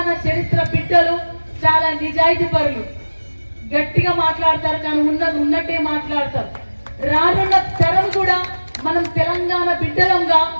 చరిత్ర బిడ్డలు చాలా నిజాయితీ పరులు, గట్టిగా మాట్లాడతారు, కానీ ఉన్నది ఉన్నట్టే మాట్లాడతారు. రానున్న తరం కూడా మనం తెలంగాణ బిడ్డలంగా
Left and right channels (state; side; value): inverted; both; correlation -1.00